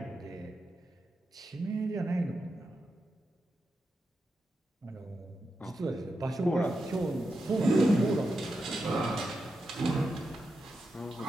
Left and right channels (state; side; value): normal; both; correlation 0.88